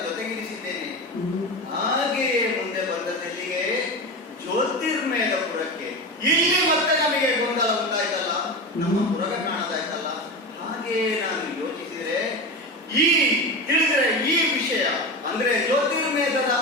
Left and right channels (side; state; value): both; normal; correlation 0.23